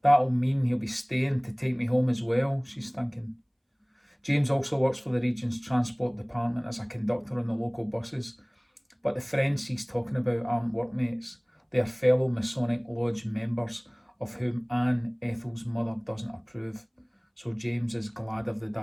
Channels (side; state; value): both; identical; correlation 1.00